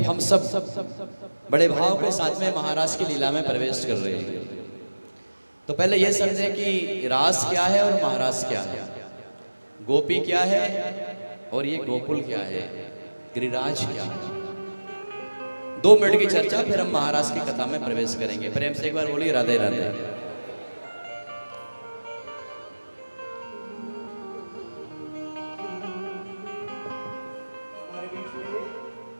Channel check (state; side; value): inverted; both; correlation -1.00